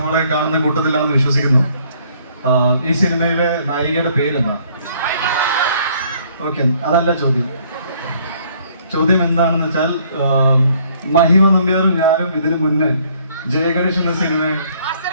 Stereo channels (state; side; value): inverted; both; correlation -0.63